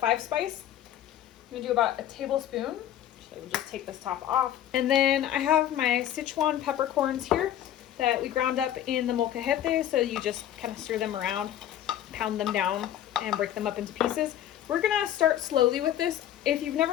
spice. I'm gonna do about a tablespoon. So we'll just take this top off. And then I have my Sichuan peppercorns here. that we ground up in the molcajete. So you just kind of stir them around, pound them down, and break them up into pieces. We're gonna start slowly with this. If you've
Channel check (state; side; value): quieter; right; 11.5 dB